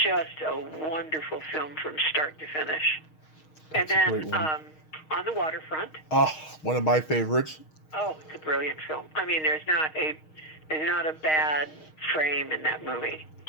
just a wonderful film from start to finish. That's and then On the Waterfront. Oh, one of my favorites. Oh, it's a brilliant film. I mean, there's not a bad frame in that movie.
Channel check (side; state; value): right; late; 6.4 ms